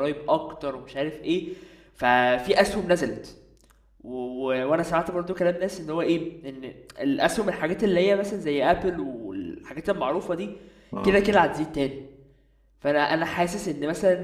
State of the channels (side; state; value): both; identical; correlation 1.00